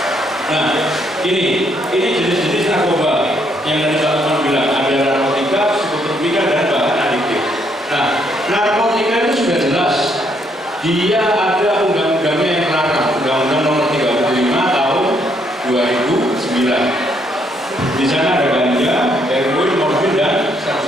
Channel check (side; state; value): both; normal; correlation 0.72